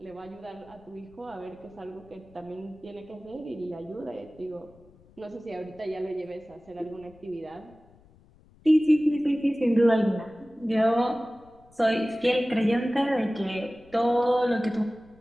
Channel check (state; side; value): noise; left; rumble, 27 dB below the sound